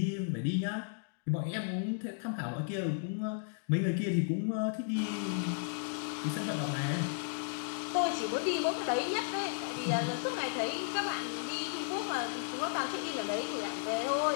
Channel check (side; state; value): right; silent; digital silence